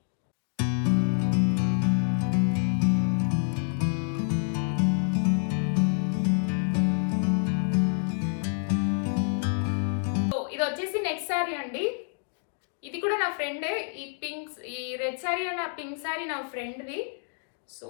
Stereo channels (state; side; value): silent; right; digital silence